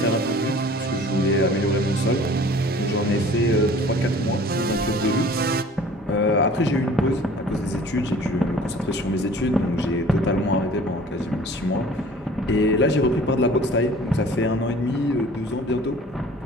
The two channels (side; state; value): both; normal; correlation 0.48